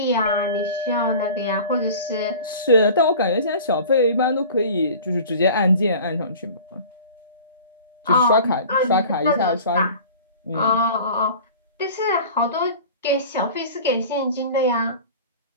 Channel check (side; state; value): both; inverted; correlation -0.40